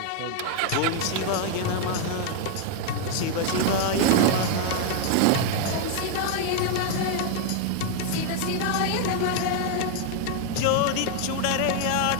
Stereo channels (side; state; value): both; different; correlation 0.00